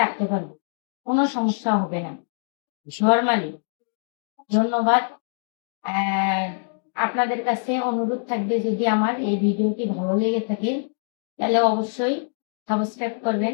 রাখতে পারবো, কোনো সমস্যা হবে না নরমালি। ধন্যবাদ। আহ, আপনাদের কাছে অনুরোধ থাকবে, যদি আমার এই ভিডিওটি ভালো লেগে থাকে তাহলে অবশ্যই সাবস্ক্রাইব করবেন,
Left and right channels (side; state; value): right; silent; digital silence